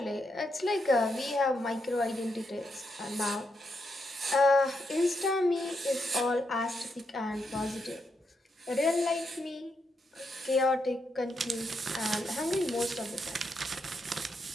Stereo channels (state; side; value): normal; both; correlation 0.81